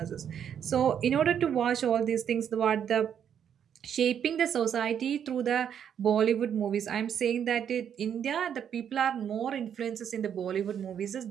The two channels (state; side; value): quieter; left; 8.6 dB